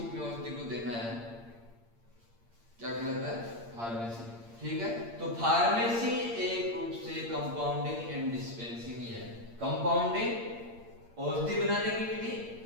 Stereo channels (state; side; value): late; left; 8.7 ms